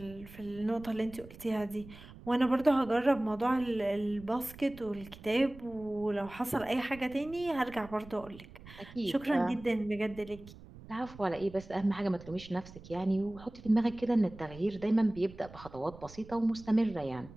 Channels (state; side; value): noise; right; rumble, 18 dB below the sound